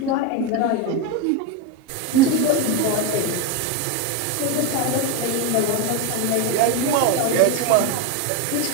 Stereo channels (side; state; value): both; different; correlation 0.03